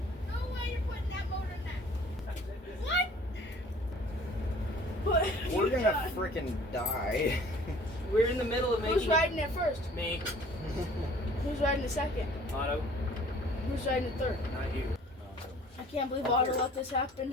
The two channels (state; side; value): normal; both; correlation 0.51